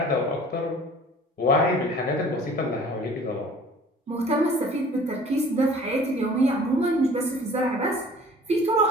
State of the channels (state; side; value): normal; both; correlation 0.48